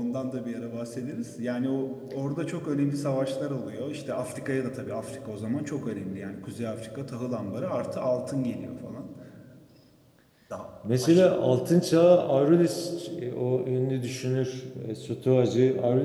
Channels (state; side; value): identical; both; correlation 1.00